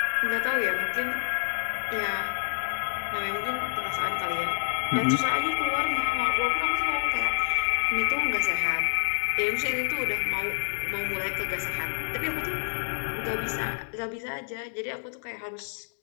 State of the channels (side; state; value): right; silent; digital silence